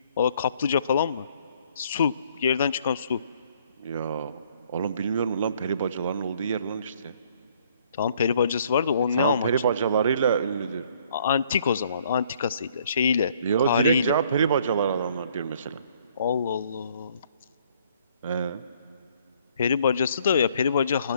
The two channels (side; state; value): both; inverted; correlation -0.62